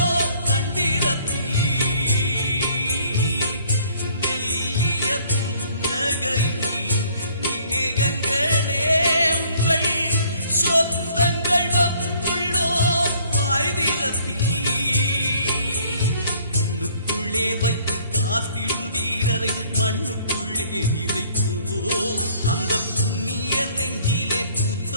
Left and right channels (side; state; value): both; inverted; correlation -0.59